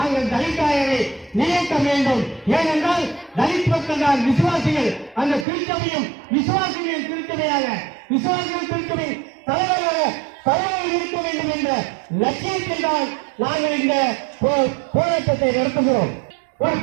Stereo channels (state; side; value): drops out; left; at 5.5 s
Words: தலித்தாயரை நியமிக்க வேண்டும். ஏனென்றால் தலித் மக்கள் தான் விசுவாசிகள். அந்த திருச்சபையும் விசுவாசிகளின் திருச்சபையாக, விசுவாசிகள் திருச்சபை தலைவர்கள் இருக்க வேண்டும் என்ற லட்சியத்தில் தான் நாங்கள் இந்த போராட்டத்தை நடத்துகிறோம். ஒரு